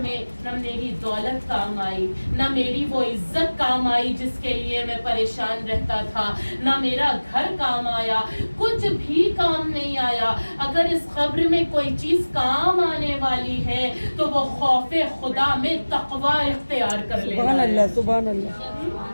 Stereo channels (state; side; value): inverted; both; correlation -1.00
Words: میں نہ میری دولت کام آئی، نہ میری وہ عزت کام آئی جس کے لیے میں پریشان رہتا تھا، نہ میرا گھر کام آیا، کچھ بھی کام نہیں آیا۔ اگر اس قبر میں کوئی چیز کام آنے والی ہے تو وہ خوف خدا میں تقوی اختیار کر لینا ہے۔ سبحان اللہ، سبحان